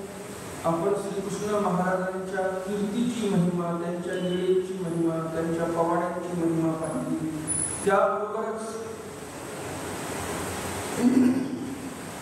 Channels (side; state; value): both; identical; correlation 1.00